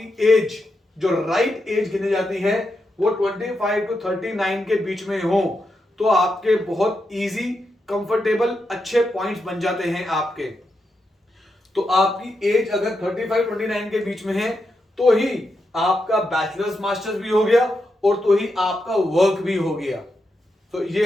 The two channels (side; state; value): both; normal; correlation 0.85